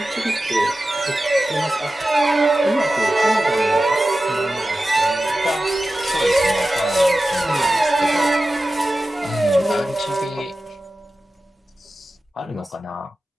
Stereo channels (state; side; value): normal; both; correlation 0.94